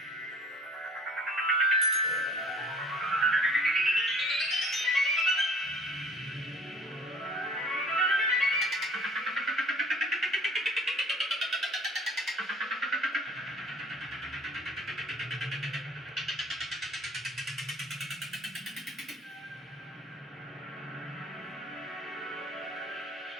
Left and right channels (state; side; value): normal; both; correlation 0.50